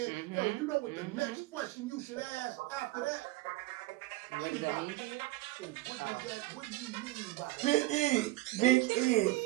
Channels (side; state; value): left; quieter; 18.7 dB